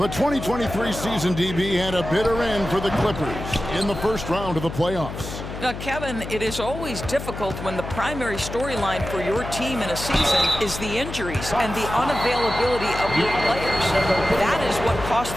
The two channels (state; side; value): noise; left; hum, 8 dB below the sound